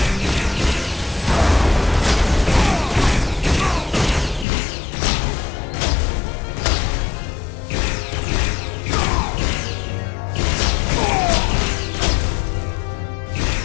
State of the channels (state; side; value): drops out; right; at 4.5 s